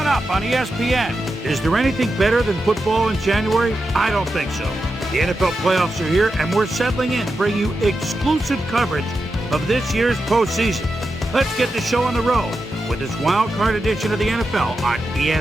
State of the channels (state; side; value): normal; both; correlation 0.89